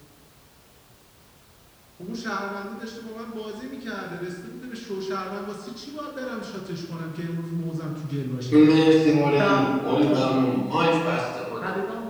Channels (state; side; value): identical; both; correlation 1.00